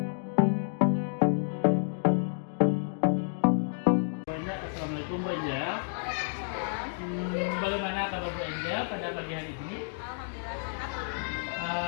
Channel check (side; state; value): right; silent; digital silence